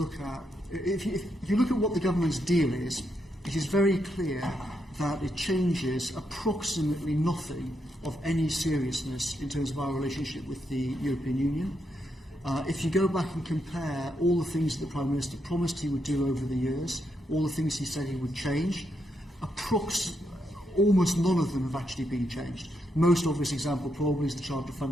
at, if you look at what the government's deal is, it is very clear that it changes approximately nothing of any seriousness in terms of our relationship with the European Union. If you go back and compare all the things that the Prime Minister promised he would do over the years, all the things he said he would change, almost none of them have actually been changed. Most obvious example probably is the Charter of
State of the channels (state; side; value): normal; both; correlation 0.80